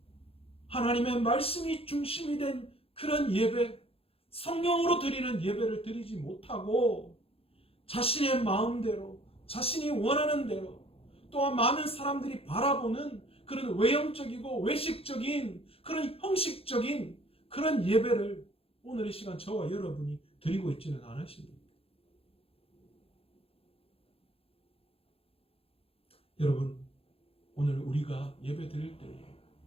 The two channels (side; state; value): right; late; 0.28 ms